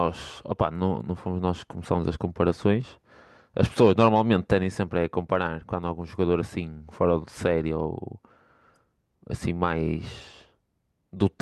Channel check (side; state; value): both; identical; correlation 1.00